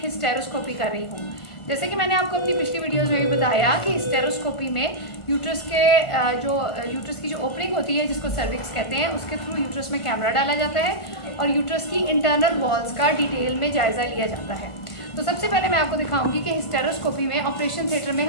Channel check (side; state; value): right; late; 1.5 ms